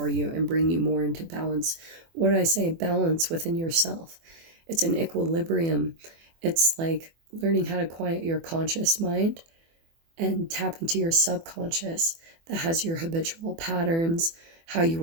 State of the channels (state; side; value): late; left; 24 ms